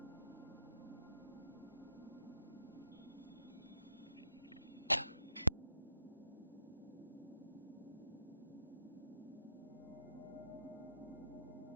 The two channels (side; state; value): both; inverted; correlation -0.77